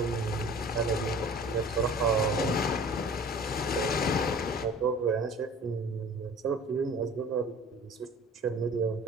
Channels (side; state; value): both; normal; correlation 0.45